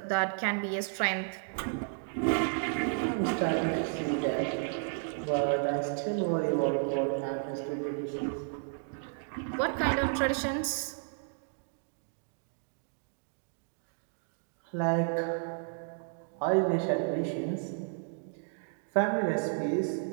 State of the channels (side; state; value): left; silent; 56 dB below the other